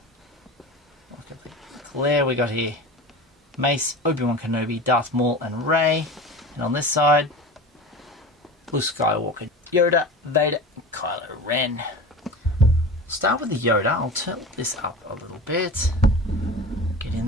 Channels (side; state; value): both; normal; correlation 0.33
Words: Look at the glare we got here. Mace, Obi-Wan Kenobi, Darth Maul and Rey. And on this side, Luke Skywalker, Yoda, Vader, and Kylo Ren. Start with the Yoda. I'll tilt this up a little bit. Get